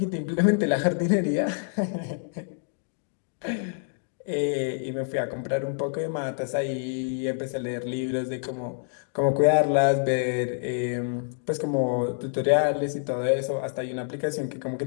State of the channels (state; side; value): silent; right; digital silence